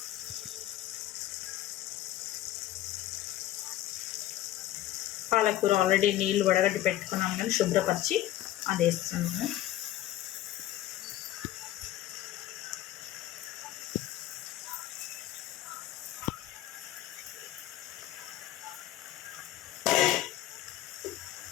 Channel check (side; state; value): right; quieter; 14.1 dB